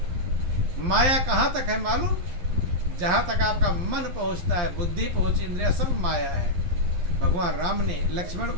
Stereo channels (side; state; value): left; late; 11 ms